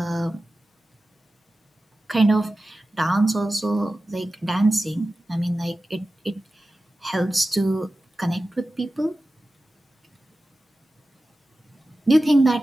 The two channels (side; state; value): both; normal; correlation 0.94